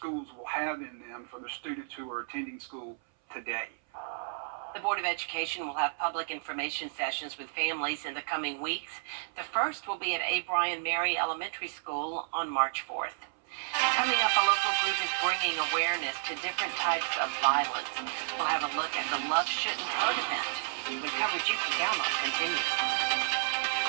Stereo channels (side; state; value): left; silent; 57 dB below the other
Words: will have in them for the students who are attending school today. The Board of Education will have public information sessions with families in the coming weeks. The first will be at A. Bryan Mary Elementary School on March 4th. Coming up, a local group is bringing awareness to different types of violence. We'll have a look at the Love Shouldn't Hurt event. The coverage you can count on continues.